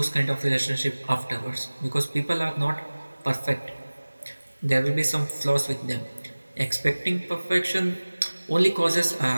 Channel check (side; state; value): both; inverted; correlation -1.00